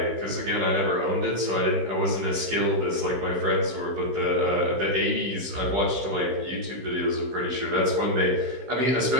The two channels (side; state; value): left; late; 16 ms